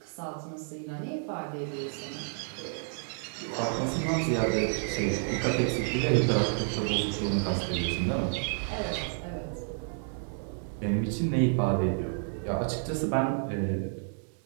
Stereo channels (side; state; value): left; silent; 57 dB below the other